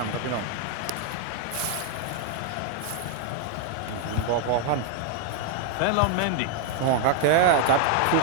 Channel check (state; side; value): different; both; correlation 0.00